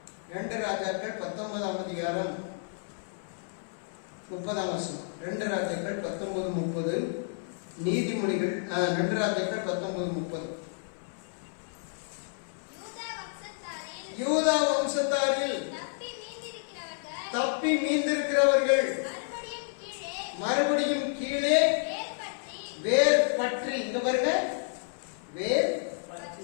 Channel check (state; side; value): silent; right; 58 dB below the other